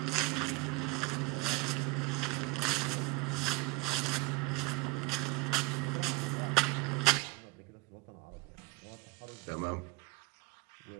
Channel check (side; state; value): left; quieter; 22.7 dB